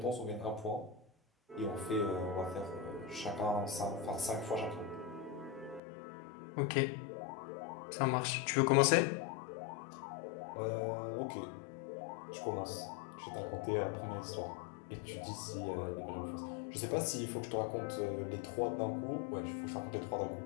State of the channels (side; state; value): right; drops out; at 5.8 s